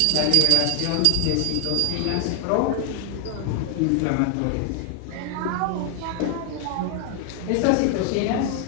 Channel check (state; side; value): different; both; correlation 0.00